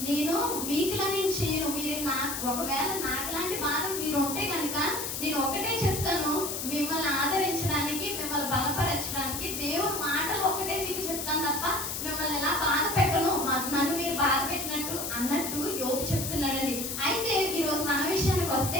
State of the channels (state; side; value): noise; left; hiss, 4 dB below the sound